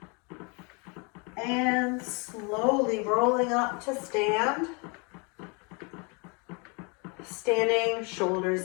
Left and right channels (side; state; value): right; quieter; 32.1 dB